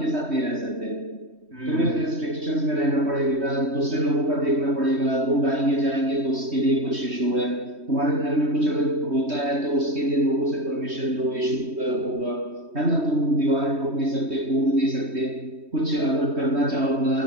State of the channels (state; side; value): late; left; 3.2 ms